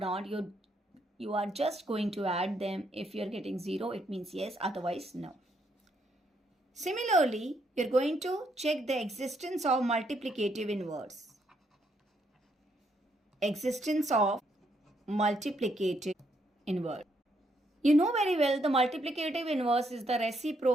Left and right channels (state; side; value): normal; both; correlation 0.75